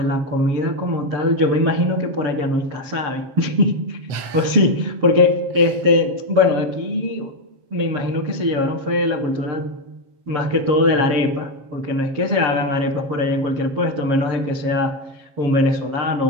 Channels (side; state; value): left; late; 7.4 ms